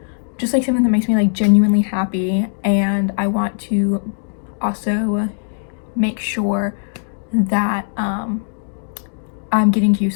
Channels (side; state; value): right; silent; digital silence